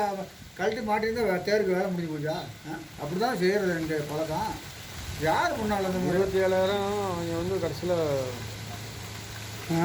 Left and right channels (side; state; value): both; identical; correlation 1.00